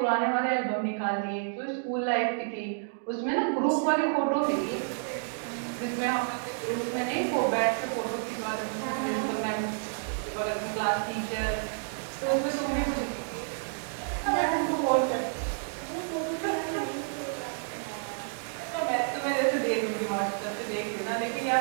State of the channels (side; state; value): left; silent; digital silence